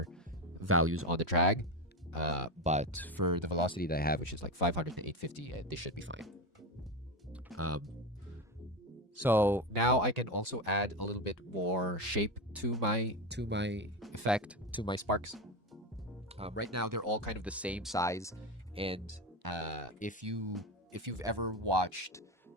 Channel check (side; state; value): both; normal; correlation 0.17